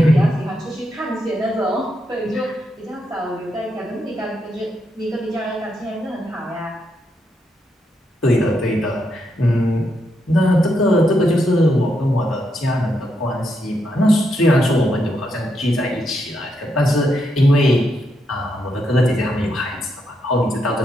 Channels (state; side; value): normal; both; correlation 0.81